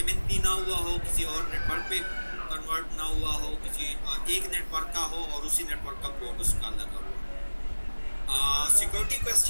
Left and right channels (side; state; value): both; inverted; correlation -1.00